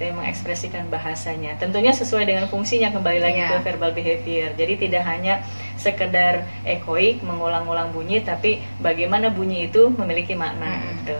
ya, mengekspresikan bahasanya. Tentunya sesuai dengan fungsinya, kembali lagi ke verbal behavior. Jadi tidak hanya sekedar echoik, mengulang-ulang bunyi, tapi bagaimana bunyi itu memiliki makna gitu.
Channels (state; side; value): inverted; both; correlation -1.00